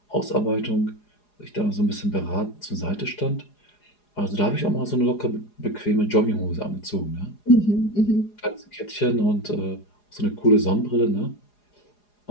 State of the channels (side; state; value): right; late; 4.8 ms